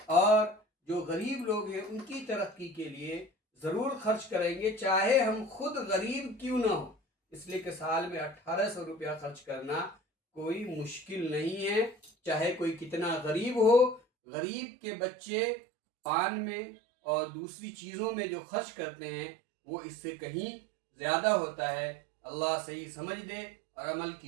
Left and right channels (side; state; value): left; drops out; at 14.0 s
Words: اور جو غریب لوگ ہیں ان کی ترقی کے لیے ضرور خرچ کریں گے، چاہے ہم خود غریب کیوں نہ ہو، اس لیے کہ سال میں 1800 روپیہ خرچ کرنا کوئی مشکل نہیں ہے، چاہے کوئی کتنا غریب ہو۔ غریب کے بچے پان میں اور دوسری چیزوں میں جو خرچ کرتے ہیں وہ اس سے کہیں زیادہ ہوتا ہے۔ اللہ صحیح سمجھ دے اور عمل